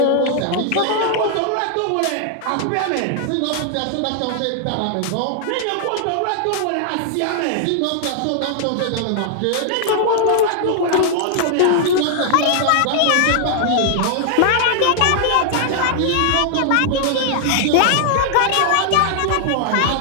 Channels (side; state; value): both; different; correlation 0.00